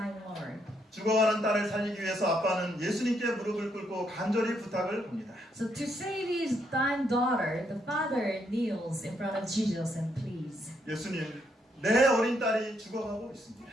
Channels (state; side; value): normal; both; correlation 0.75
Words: Lord. 죽어가는 딸을 살리기 위해서 아빠는 예수님께 무릎을 꿇고 간절히 부탁을 합니다. So to save his dying daughter, the father kneels in front of Jesus and pleads, 예수님, 내 어린 딸이 죽어가고 있습니다.